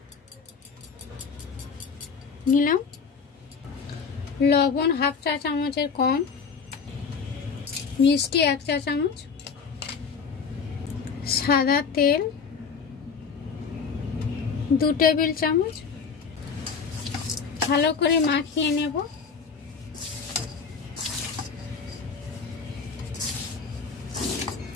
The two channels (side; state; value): right; quieter; 5.7 dB